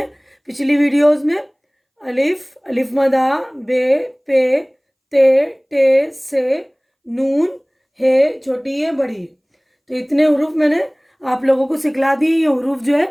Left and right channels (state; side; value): identical; both; correlation 1.00